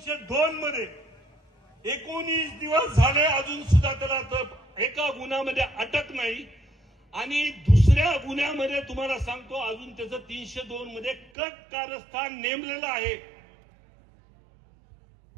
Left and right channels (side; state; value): left; drops out; at 11.2 s